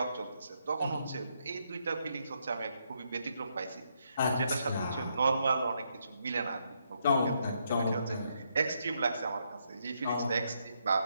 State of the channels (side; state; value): both; inverted; correlation -0.77